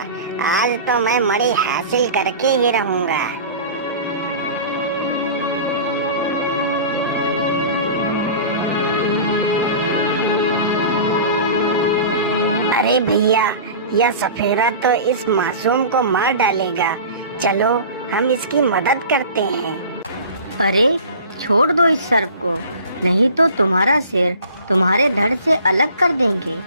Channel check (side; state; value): both; inverted; correlation -0.39